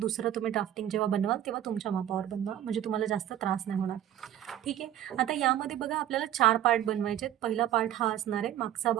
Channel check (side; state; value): left; quieter; 11.8 dB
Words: तुम्ही ड्राफ्टिंग जेव्हा बनवाल तेव्हा तुमच्या मापावर बनवा, म्हणजे तुम्हाला जास्त त्रास नाही होणार. ठीक आहे. आता यामध्ये बघा आपल्याला 4 पार्ट बनवायचे आहेत. पहिला पार्ट हा असणार आहे मागचा